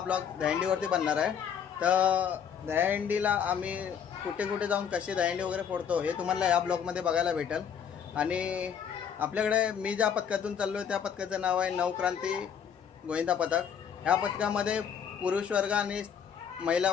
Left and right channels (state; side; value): quieter; right; 7.8 dB